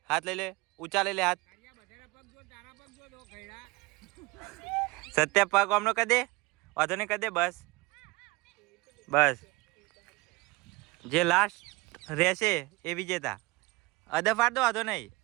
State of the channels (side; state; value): left; quieter; 22.9 dB